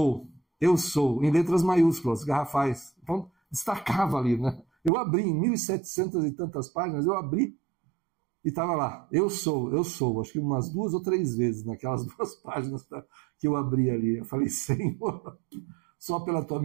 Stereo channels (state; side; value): drops out; left; at 4.9 s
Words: em letras maiúsculas, garrafais. Então, destacava ali, né? Eu abri em 1.700 e tantas páginas, eu abri e estava lá: eu sou. Acho que umas 2 ou 3 vezes naquelas 2 páginas que eu abri ali. Eu falei: Senhor, só pela tua